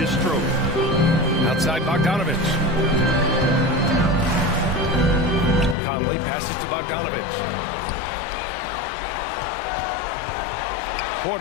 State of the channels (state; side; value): drops out; right; at 5.8 s